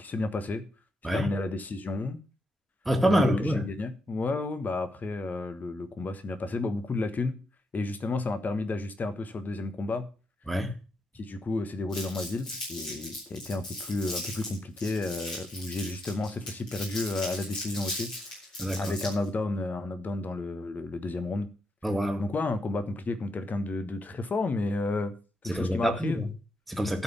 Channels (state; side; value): normal; both; correlation 0.82